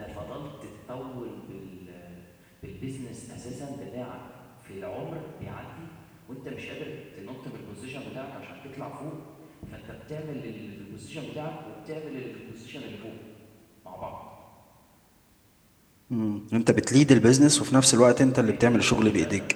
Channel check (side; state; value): both; identical; correlation 1.00